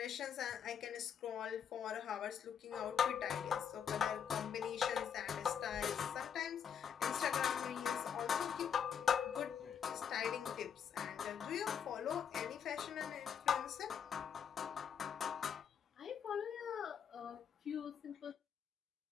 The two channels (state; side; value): quieter; right; 7.8 dB